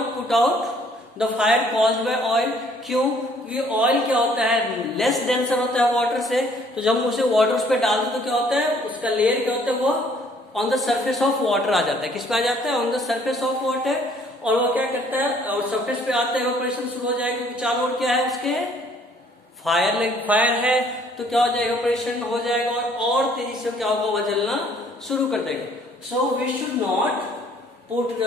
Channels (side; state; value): both; normal; correlation 0.60